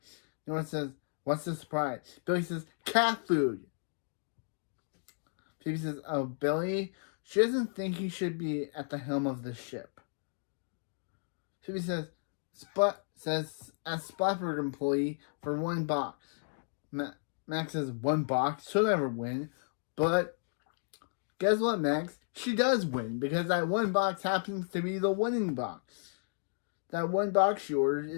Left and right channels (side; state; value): right; silent; digital silence